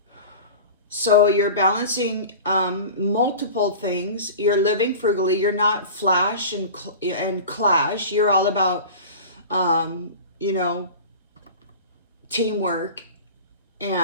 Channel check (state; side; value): inverted; both; correlation -0.35